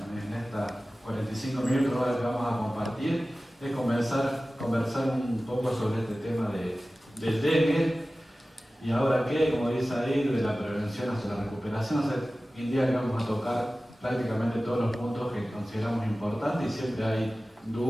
estas 45 minutos ahora que vamos a compartir es conversar un poco sobre este tema del dengue y ahora qué, como dice ahí, de la prevención hacia la recuperación. O sea, hoy en día que vamos a tocar prácticamente todos los puntos que consideramos importantes y siempre hay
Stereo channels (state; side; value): normal; both; correlation 0.96